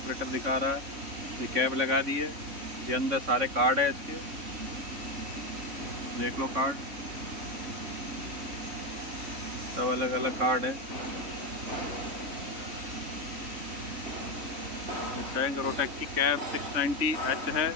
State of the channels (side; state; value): left; late; 3.5 ms